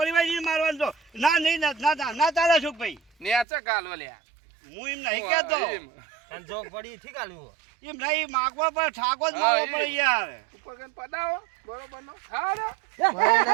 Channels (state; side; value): drops out; left; at 3.5 s